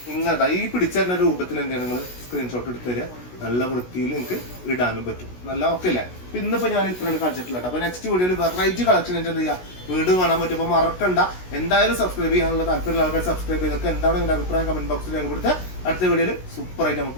ഇങ്ങനത്തെ ഈ പിടിച്ചറിഞ്ഞ രൂപത്തിൽ എന്താണ് നിങ്ങൾ സ്ക്രീൻഷോട്ട് എടുത്ത് തരിക. നല്ല വൃത്തിയിൽ നിങ്ങൾക്ക് ഇടാനും പറ്റും. നല്ല ഓക്കെ അല്ലേ? ഇന്നിപ്പോ ഞാൻ ഇത്രയാണ് കാണിച്ചിട്ടില്ല. അപ്പൊ നെക്സ്റ്റ് വീഡിയോയിൽ വെറൈറ്റി കളക്ഷൻ എന്ത് ചെയ്യാ വീണ്ടും കാണാൻ പറ്റും. അപ്പൊ മറക്കണ്ട, എന്തായാലും സബ്സ്ക്രൈബ് ചെയ്യാനുള്ള താല്പര്യമുള്ള ആൾക്കാർ സബ്സ്ക്രൈബ് ചെയ്തൊക്കെ എന്താണ് നിങ്ങളുടെ അഭിപ്രായം കമന്റ് ബോക്സിൽ രേഖപ്പെടുത്തുക. അടുത്ത വീഡിയോയിൽ സൂപ്പർ ആയിട്ട്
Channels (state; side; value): late; right; 16 ms